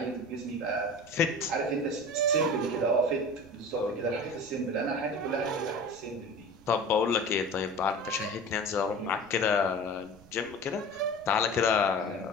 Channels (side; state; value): right; noise; rumble, 25 dB below the sound